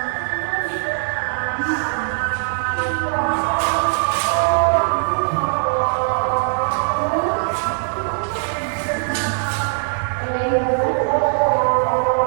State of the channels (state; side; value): silent; left; 62 dB below the other